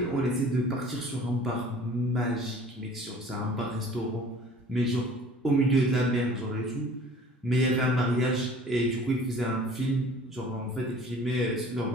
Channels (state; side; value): normal; both; correlation 0.48